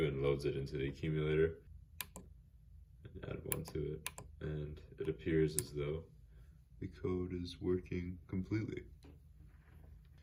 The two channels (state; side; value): identical; both; correlation 1.00